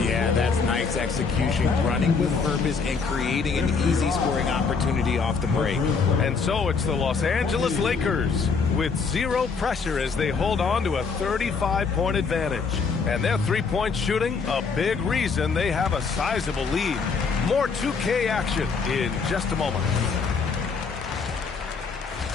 Yeah, that's nice execution, running with purpose and creating an easy scoring opportunity off the break. And so it's the Los Angeles Lakers with 0 pressure as they hold on to a 35-point advantage. And their 3-point shooting, a big reason they have a sizable lead. More 2K action in just a moment.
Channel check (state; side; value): quieter; right; 5.1 dB